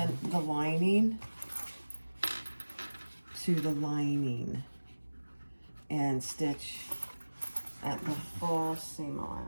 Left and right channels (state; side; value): inverted; both; correlation -1.00